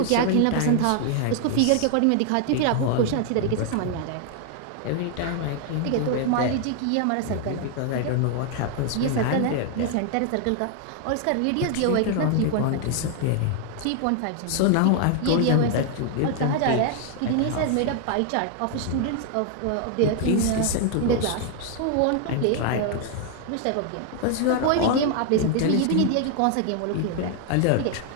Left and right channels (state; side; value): different; both; correlation 0.00